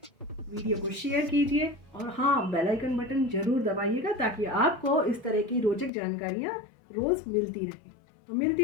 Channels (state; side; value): drops out; right; at 5.9 s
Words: वीडियो को शेयर कीजिए और हाँ, बेल आइकन बटन ज़रूर दबाइएगा ताकि आपको इस तरह की रोचक जानकारियाँ रोज़ मिलती रहें। तो मिलती